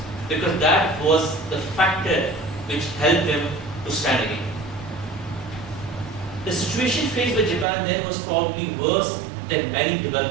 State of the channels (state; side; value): drops out; left; at 7.7 s